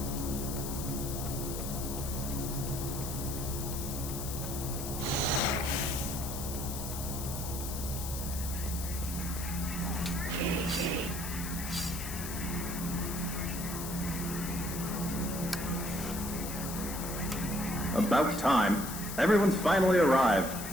About time. Everyone's finally arrived.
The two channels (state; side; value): noise; left; hiss, 7 dB below the sound